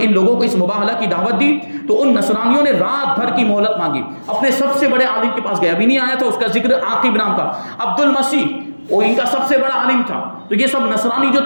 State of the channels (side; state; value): both; inverted; correlation -1.00